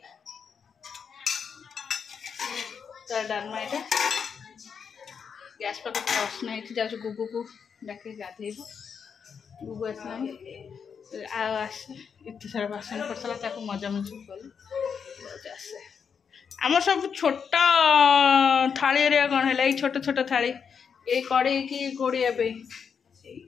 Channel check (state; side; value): quieter; right; 6.6 dB